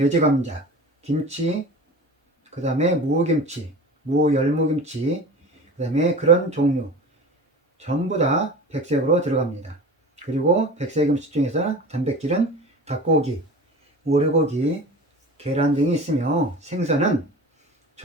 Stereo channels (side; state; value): both; normal; correlation 0.36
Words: 김치, 그 다음에 무김치, 무열무김치, 그 다음에 그런 종류 전부 다 백색으로 들어갑니다. 그리고 백색 음식 중에서 단백질은 닭고기, 오리고기, 계란 등이 있으며 생선은